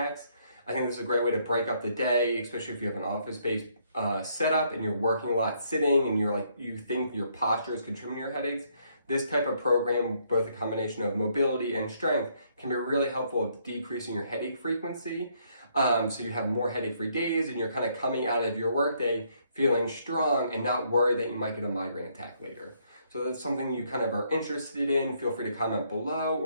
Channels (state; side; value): inverted; both; correlation -0.70